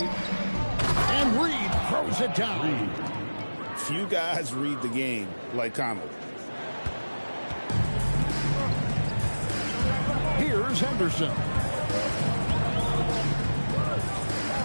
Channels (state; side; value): inverted; both; correlation -1.00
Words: And Reed throws it down. Few guys read the game like Conley. Here's Henderson.